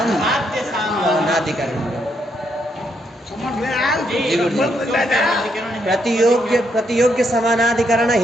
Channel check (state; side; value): normal; both; correlation 0.77